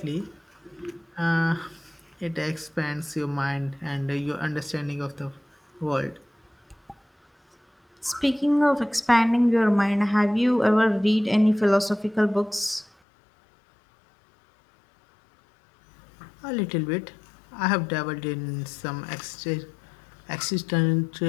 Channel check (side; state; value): right; drops out; at 12.9 s